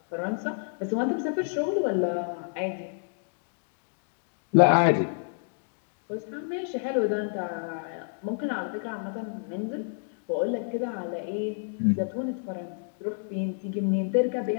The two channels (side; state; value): right; silent; digital silence